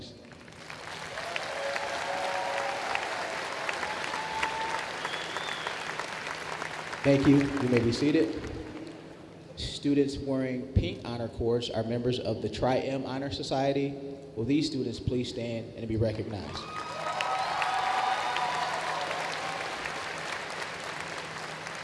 Thank you. You may be seated. Students wearing pink honor cords are members of the Tri-M Honor Society. Will these students please stand and be recognized?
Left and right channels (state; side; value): identical; both; correlation 1.00